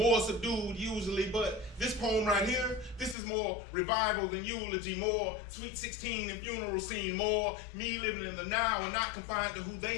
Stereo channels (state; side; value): drops out; right; at 3.2 s